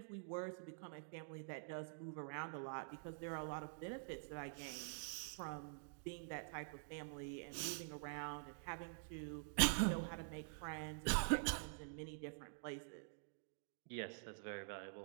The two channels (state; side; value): silent; left; digital silence